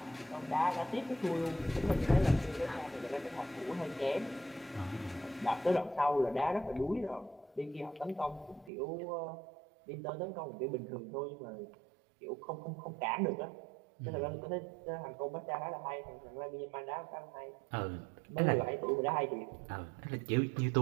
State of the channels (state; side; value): drops out; left; at 8.7 s